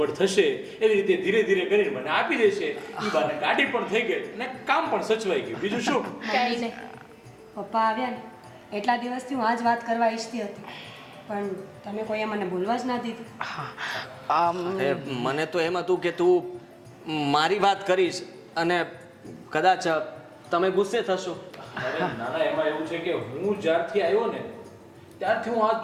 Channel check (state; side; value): identical; both; correlation 1.00